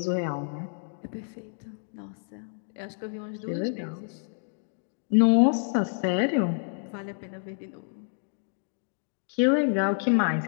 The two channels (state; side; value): silent; right; digital silence